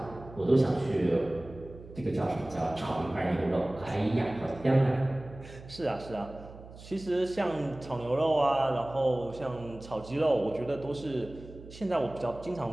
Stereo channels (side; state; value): right; noise; hum, 17 dB below the sound